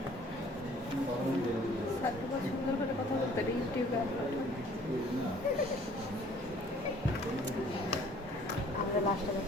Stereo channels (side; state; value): both; normal; correlation 0.55